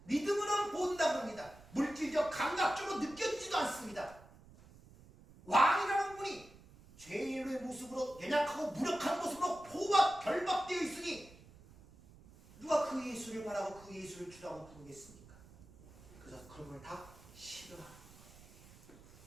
믿음으로는 본다 그럽니다. 물질적 감각적으로 느껴지지도 않습니다. 왕이라는 분이 죄인의 모습으로 연약하고 무력한 모습으로 포박 결박되어 있으니 누가 그 예수를 바라고 그 예수를 주라고 부르겠습니까? 그래서 그런 걸 다 싫어하는 거예요.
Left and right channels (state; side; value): noise; right; rumble, 22 dB below the sound